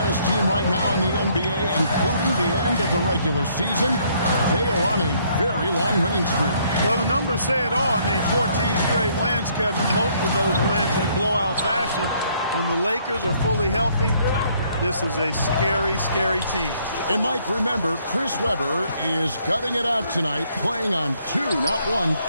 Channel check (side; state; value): both; inverted; correlation -0.66